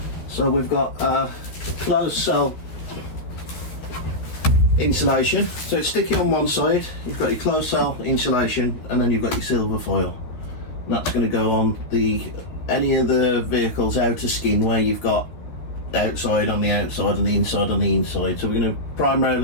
So we've got closed cell insulation. So it's sticky on one side. You've got your closed cell insulation, and then you've got your silver foil. And that's going to go on any of the vehicle's outer skin where you've got outside on the outside and the inside on the inside. So we're going to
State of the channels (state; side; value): late; right; 12 ms